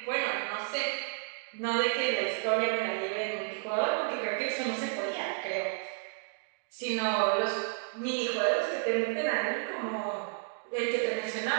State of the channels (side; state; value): left; silent; 57 dB below the other